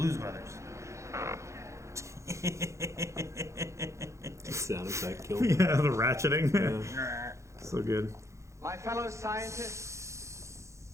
Brothers. Sound effect killed. Yeah, the ratcheting. Yeah. So good. My fellow scientists,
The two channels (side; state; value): left; late; 0.14 ms